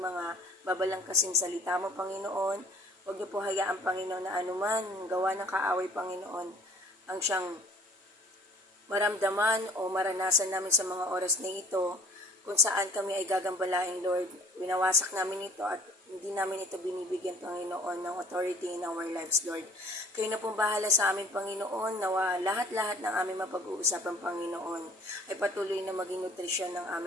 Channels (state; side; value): normal; both; correlation 0.52